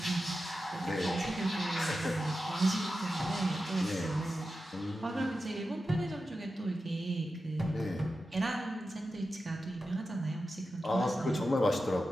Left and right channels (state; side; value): normal; both; correlation 0.91